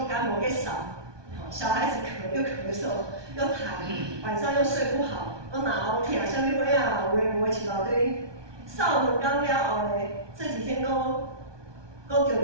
感冒，给扫，小孩子又咳嗽，又痰，晚上又睡不好，又脑痛，啥物鬼啊，有诶无诶一大堆。扫2工了后呢，这几天都都得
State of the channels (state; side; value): late; left; 1.2 ms